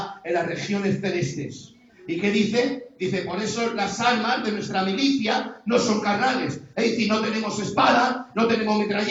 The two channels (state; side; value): identical; both; correlation 1.00